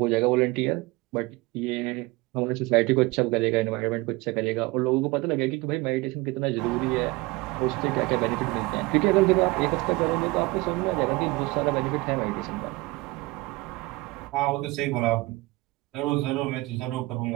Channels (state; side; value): quieter; left; 22.4 dB